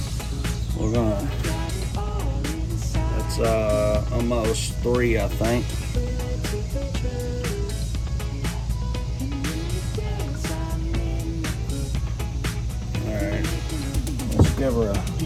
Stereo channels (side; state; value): both; identical; correlation 1.00